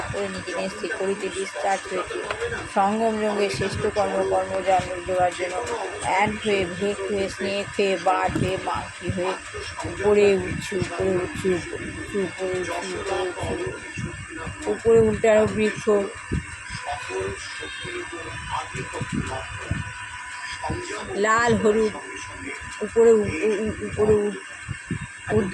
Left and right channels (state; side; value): identical; both; correlation 1.00